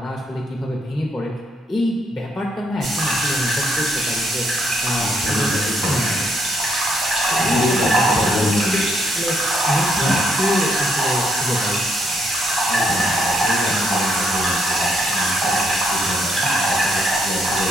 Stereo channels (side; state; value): both; normal; correlation 0.73